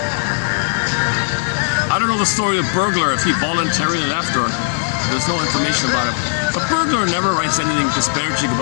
I don't know the story of Bergler, if he voluntarily left or there's no information about it. But Bergler never writes anything disparaging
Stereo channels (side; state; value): right; silent; 68 dB below the other